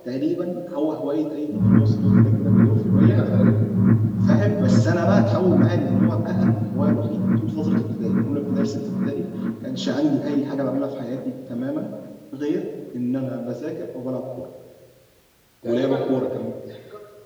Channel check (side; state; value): both; identical; correlation 1.00